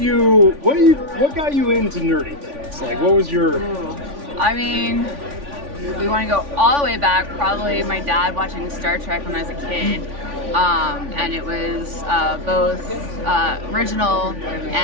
into nerdy things? Like, what was your... I mean, we want to go all the way back, probably my dad watching Star Trek when I was a kid. And it was both original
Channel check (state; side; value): late; left; 3.5 ms